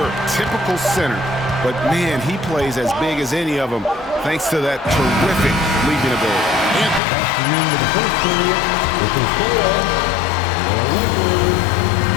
typical center, but man, he plays as big as any of them thanks to that terrific leaping ability.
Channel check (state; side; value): drops out; right; at 7.0 s